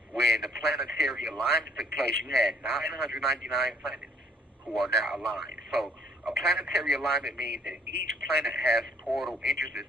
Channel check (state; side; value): normal; both; correlation 0.62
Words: when the planetary alignment took place, you had 999 planets who are now aligned. So a planetary alignment means that each planet has portal entrances